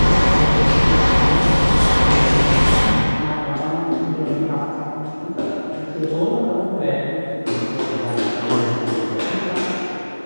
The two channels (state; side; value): inverted; both; correlation -1.00